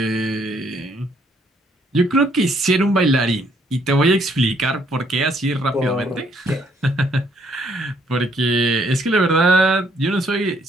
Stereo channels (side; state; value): both; normal; correlation 0.68